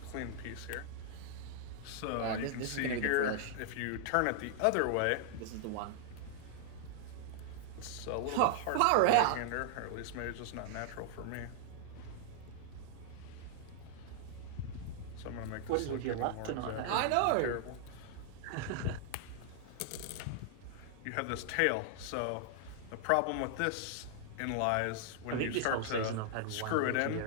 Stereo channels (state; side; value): different; both; correlation -0.01